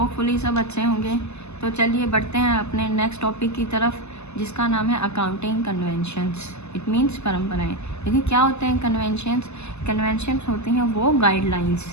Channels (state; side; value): late; right; 0.80 ms